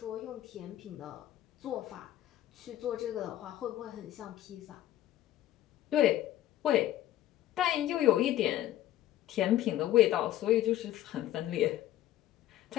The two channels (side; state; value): right; quieter; 13.4 dB